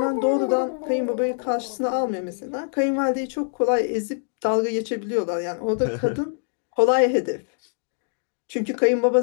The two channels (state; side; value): silent; right; digital silence